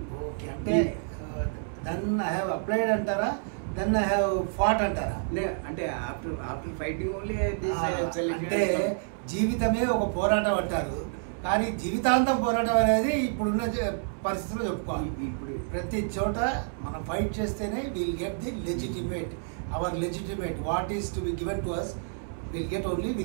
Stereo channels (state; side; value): silent; left; 58 dB below the other